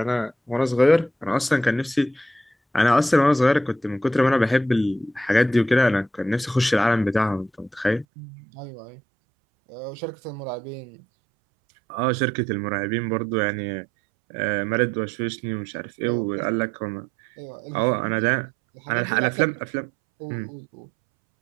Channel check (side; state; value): left; drops out; at 8.1 s